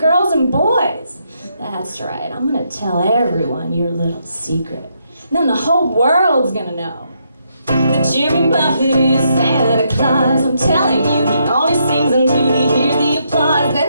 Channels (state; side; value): inverted; both; correlation -0.77